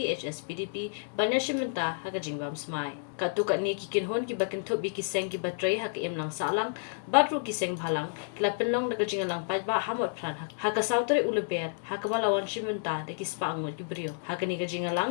HSPDP banyashimenta hakajingbam smai katu katni ki kinhon ki bakin thubi ki seng ki batrai hak emlang salang batru ki seng bhalang kila penlong de gejingalang pajba hamot pran haka sautare uleber hakabalawan shimenta de ki spangot ki brio hakani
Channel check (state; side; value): silent; right; digital silence